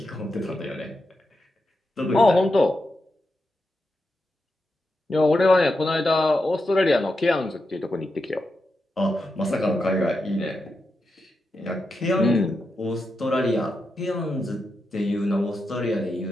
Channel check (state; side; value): normal; both; correlation 0.87